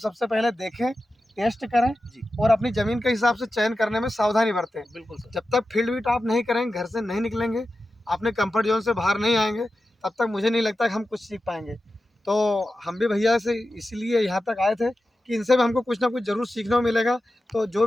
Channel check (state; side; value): normal; both; correlation 0.93